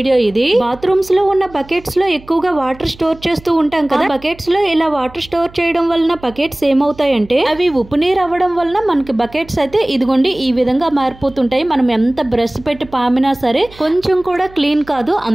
ఇది. బాత్రూమ్స్ లో ఉన్న బకెట్స్ లో ఎక్కువగా వాటర్ స్టోర్ చేస్తూ ఉంటాం కదా. బకెట్స్ లో ఇలా వాటర్ స్టోర్ చేయడం వలన బకెట్స్ ఏమవుతాయంటే అవి ఉప్పు నీరు అవ్వడం వలన మనకి బకెట్స్ అయితే ఇదిగోండి ఈ విధంగా మారిపోతుంటాయి. మనం ఎంత బ్రష్ పెట్టి పామినా సరే కొంచెం కూడా క్లీన్ కాదు.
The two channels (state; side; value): noise; right; hum, 22 dB below the sound